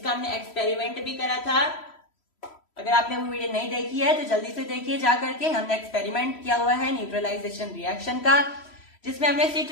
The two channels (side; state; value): right; late; 3.1 ms